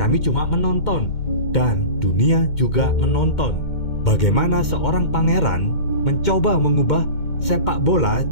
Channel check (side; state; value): right; late; 2.1 ms